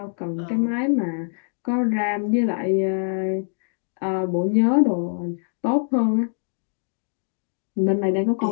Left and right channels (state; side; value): silent; right; digital silence